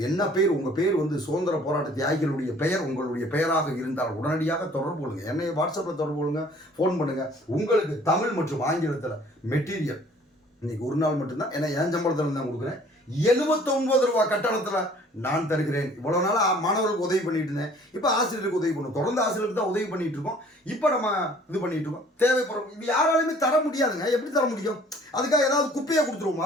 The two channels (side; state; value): both; normal; correlation 0.54